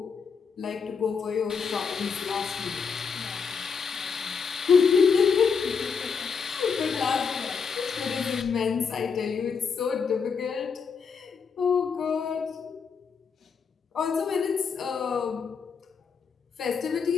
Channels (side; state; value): right; quieter; 5.9 dB